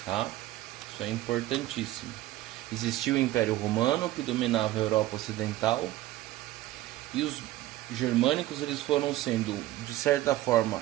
tá? Isso é importantíssimo. Existiu o Império Romano, que dominava a Europa Ocidental, e os germânicos eles foram sendo, de certa forma,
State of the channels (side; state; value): left; quieter; 15.6 dB